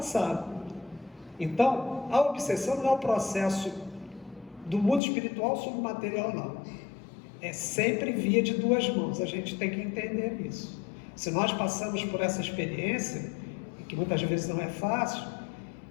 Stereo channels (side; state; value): right; drops out; at 5.0 s